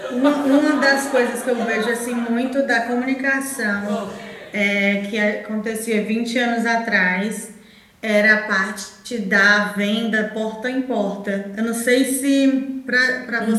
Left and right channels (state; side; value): identical; both; correlation 1.00